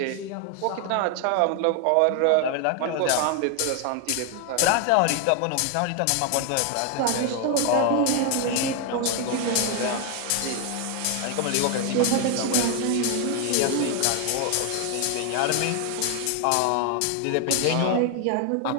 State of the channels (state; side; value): different; both; correlation 0.00